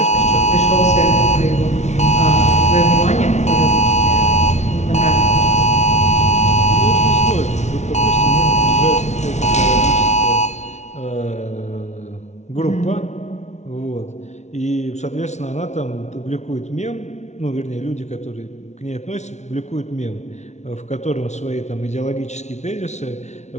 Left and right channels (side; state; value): right; late; 0.32 ms